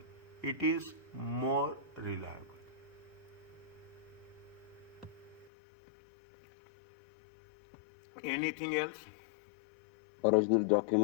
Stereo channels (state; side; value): drops out; right; at 5.5 s